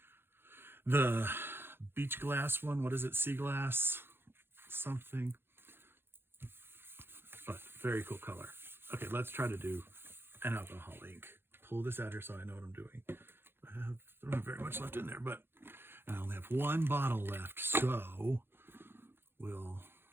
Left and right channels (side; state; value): left; late; 0.11 ms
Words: the beach glass one. What is it? Sea glass something. But very cool color. Okay, let's try to do an alcohol ink. Pull this out here so I know what I'm doing. I don't have very much left in there, but I only have one bottle left, so we'll